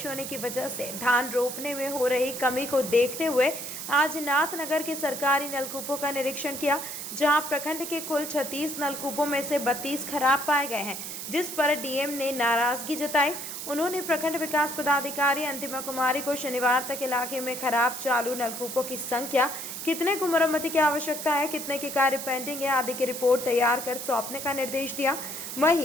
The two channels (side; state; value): right; noise; hiss, 7 dB below the sound